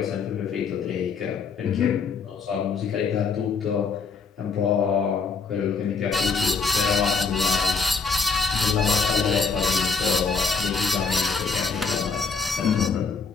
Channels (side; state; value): right; quieter; 5.0 dB